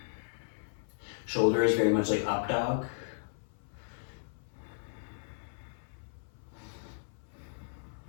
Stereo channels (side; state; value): right; silent; 54 dB below the other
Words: Shoulder is very much like up dog.